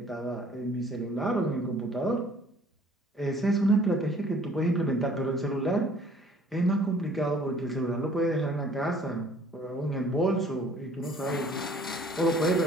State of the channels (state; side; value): normal; both; correlation 0.55